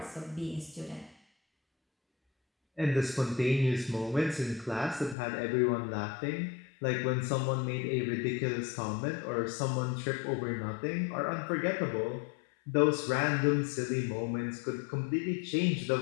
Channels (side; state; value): right; drops out; at 5.2 s